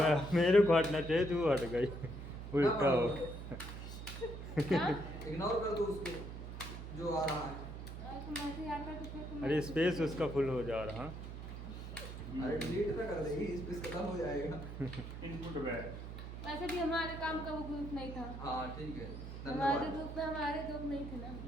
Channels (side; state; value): right; noise; hum, 9 dB below the sound